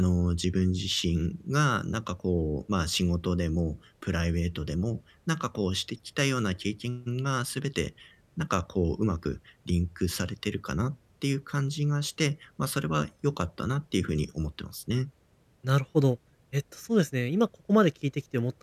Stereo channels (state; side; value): identical; both; correlation 1.00